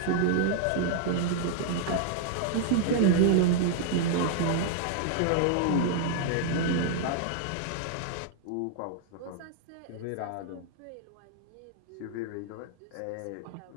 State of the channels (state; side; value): different; both; correlation -0.01